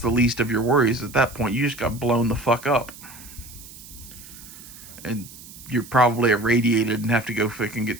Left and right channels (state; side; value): noise; right; hiss, 17 dB below the sound